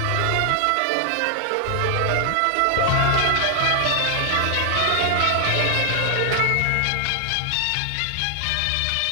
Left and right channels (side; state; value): both; different; correlation 0.00